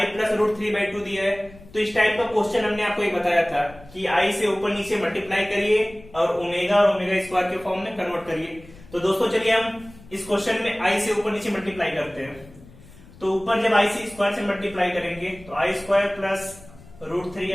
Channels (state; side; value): noise; left; rumble, 21 dB below the sound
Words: प्लस रूट 3/2 दिया है, तो इस टाइप का क्वेश्चन हमने आपको एक बताया था कि i से ऊपर नीचे मल्टीप्लाई करिए और ओमेगा स्क्वायर के फॉर्म में कन्वर्ट करिए। तो दोस्तों, चलिए हम इस क्वेश्चन में i से ऊपर नीचे मल्टीप्लाई करते हैं। तो ऊपर जब i से स्क्वायर से मल्टीप्लाई करेंगे तो i square plus root